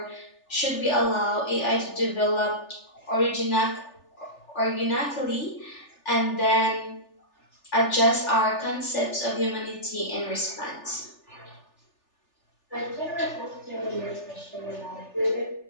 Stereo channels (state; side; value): late; right; 3.4 ms